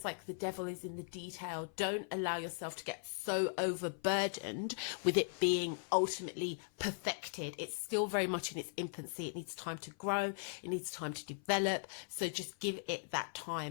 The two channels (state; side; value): silent; right; 52 dB below the other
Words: like the devil is in the detail. Don't allow yourself to get so overburdened with it being ultimately perfected. It's still very much in its infancy. It needs time to grow. It needs time to develop. So just give it that